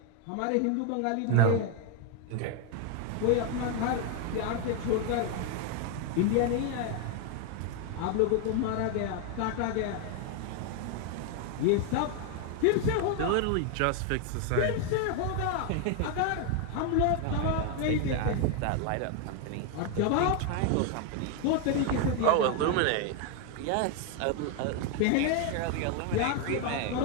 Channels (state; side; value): different; both; correlation 0.01